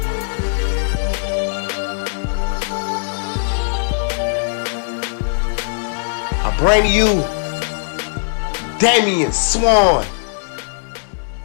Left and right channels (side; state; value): right; silent; 64 dB below the other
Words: I bring to you Damian Swann.